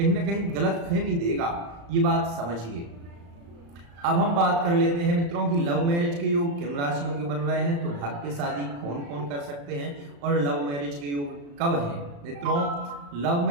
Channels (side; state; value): left; late; 35 ms